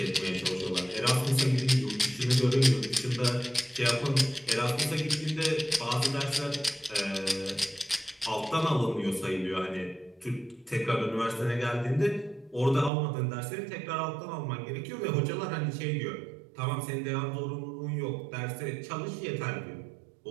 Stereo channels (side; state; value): left; drops out; at 12.9 s